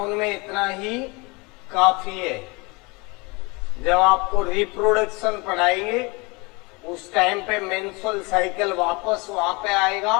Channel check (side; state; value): right; quieter; 27.0 dB